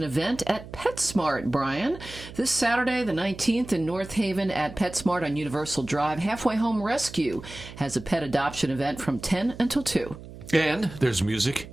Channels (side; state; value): right; noise; hum, 15 dB below the sound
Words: event at PetSmart, Brian. This Saturday, the 19th in North Haven at PetSmart on Universal Drive, Halfway Home Rescue has a pet adoption event from 10 until 2. And there's music